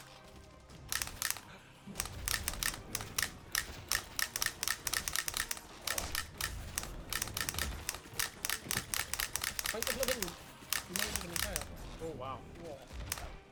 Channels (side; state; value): both; identical; correlation 1.00